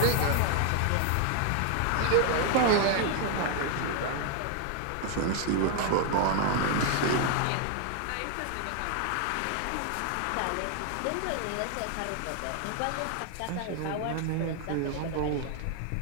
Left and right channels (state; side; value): different; both; correlation 0.00